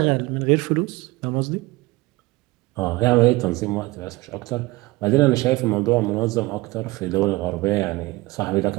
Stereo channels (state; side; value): quieter; left; 21.3 dB